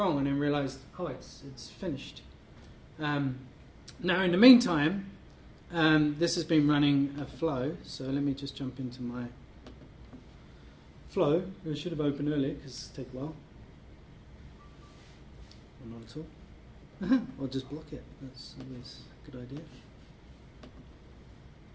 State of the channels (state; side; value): identical; both; correlation 1.00